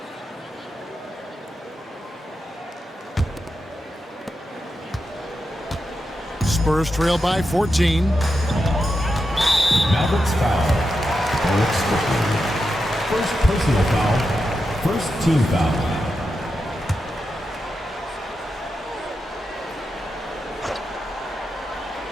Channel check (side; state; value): both; normal; correlation 0.88